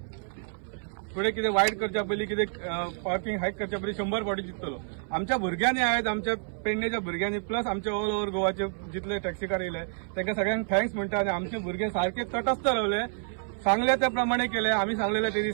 फुडें कितें वायट करच्या पयलीं कितें पार्किंग हायक करच्या पयलीं 100 फावटी चिंततलो। आमच्या भुरग्यांनी आहेत आमच्या पेडणेच्या भुरग्यांनी प्लस आमच्या ऑल ओव्हर गोवाचे जितले टॅक्सीकार येयले तांकां सगळ्यांक थँक्स म्हणटा आनी आमचे भुरगे सारखे तटस्थ रावले सांगले त्या प्रमाणे केले। आम्ही सांगलेले ते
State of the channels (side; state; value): left; silent; 59 dB below the other